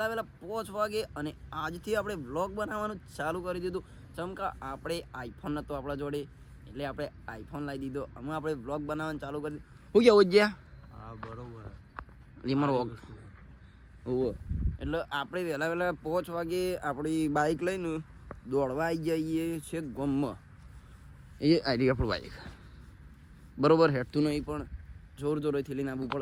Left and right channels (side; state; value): both; identical; correlation 1.00